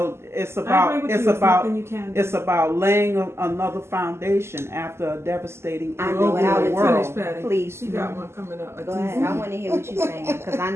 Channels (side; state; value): left; late; 0.12 ms